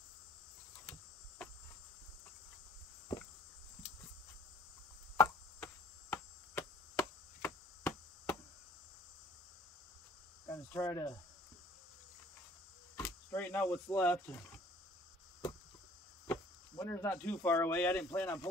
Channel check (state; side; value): normal; both; correlation 0.52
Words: Gonna try to straighten out what's left. Winter's not too far away. I didn't plan on